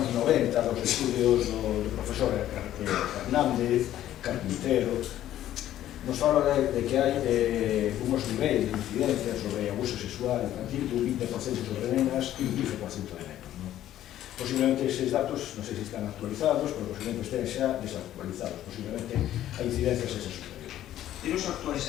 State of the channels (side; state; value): right; quieter; 12.5 dB